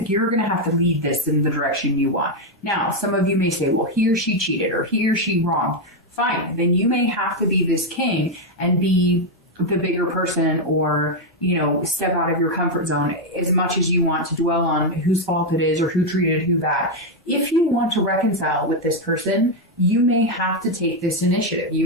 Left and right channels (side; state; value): both; normal; correlation 0.03